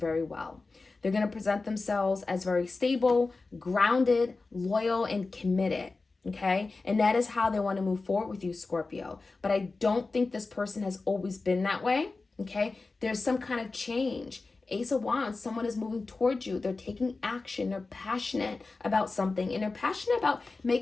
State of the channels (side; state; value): right; quieter; 3.7 dB